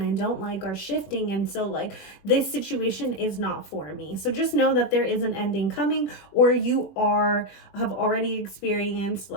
I don't like are shifting. And so like this situation is not for me. So just know that there is an ending coming, or you have already experienced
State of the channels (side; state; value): right; late; 21 ms